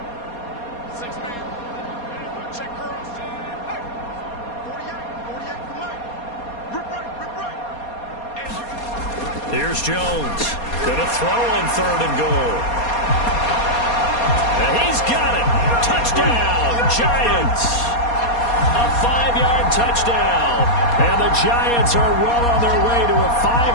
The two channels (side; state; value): right; late; 4.2 ms